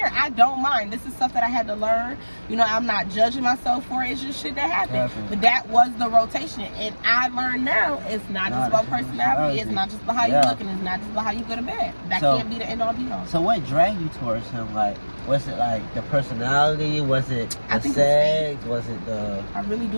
I don't mind. This is stuff that I had to learn. You know, I'm not judging myself for it. It's just shit that happened. But that was the rotation. And I learned now it's not just about personality. It's not just about how you look, and it's not just about how you go to bed. That can't be the end all be all. So what dragged you towards him? Like, was it like the personality? Was it the sex? Was it the... I really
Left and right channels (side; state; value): both; inverted; correlation -1.00